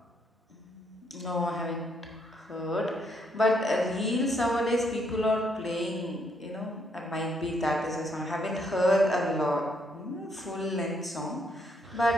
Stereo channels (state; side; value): normal; both; correlation 0.72